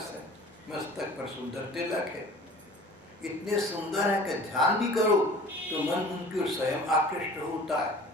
है, मस्तक पर सुंदर तिलक है। इतने सुंदर है कि ध्यान भी करो तो मन उनकी ओर स्वयं आकृष्ट होता है।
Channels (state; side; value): normal; both; correlation 0.45